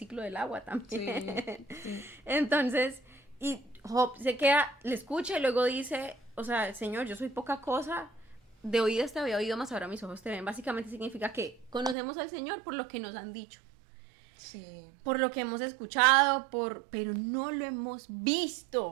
del agua también. Sí. Entonces, y Job se queda, le escucha y luego dice, o sea, Señor, yo soy poca cosa, de oídas te había oído, más ahora mis ojos te ven. Básicamente significa que conocemos al Señor por lo que nos han dicho, Sí. por lo que hemos escuchado, pero no lo hemos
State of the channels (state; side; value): drops out; left; at 12.0 s